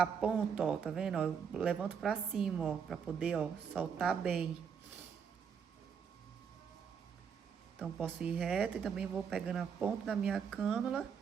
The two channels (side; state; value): left; quieter; 6.9 dB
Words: ponta, ó, tá vendo? Ó, eu levanto pra cima, ó, pra poder, ó, soltar bem. Então, posso ir reto e também vou pegando a ponta da minha cânula